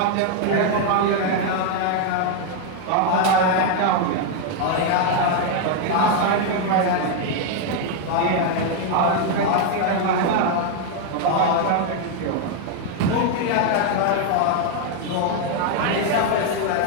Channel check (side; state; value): both; different; correlation 0.01